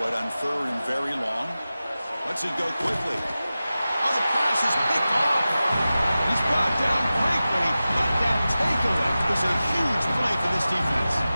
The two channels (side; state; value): both; inverted; correlation -0.95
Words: it on 3rd and very long. Lets it go quickly. Oh, the pass is picked off. He's brought down quickly, but that takeaway was a huge play for this defense.